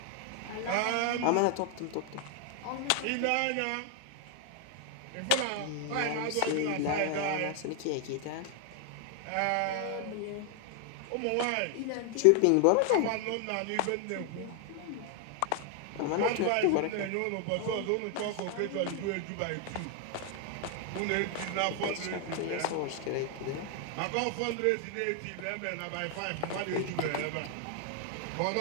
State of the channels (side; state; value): both; different; correlation 0.00